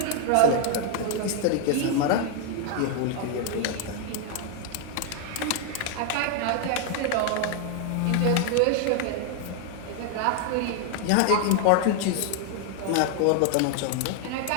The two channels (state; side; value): different; both; correlation 0.00